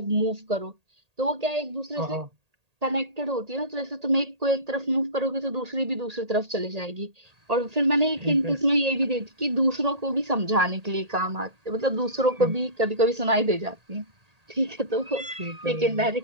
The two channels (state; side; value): late; left; 1.8 ms